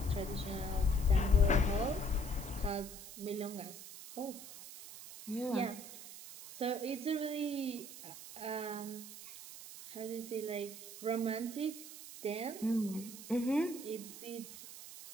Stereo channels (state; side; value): noise; right; hiss, 13 dB below the sound